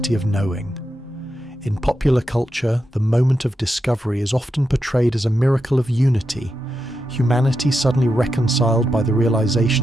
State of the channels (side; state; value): both; normal; correlation 0.87